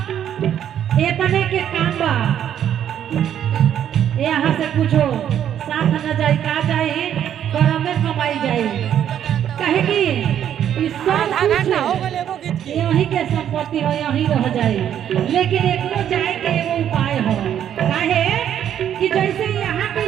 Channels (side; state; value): left; quieter; 9.9 dB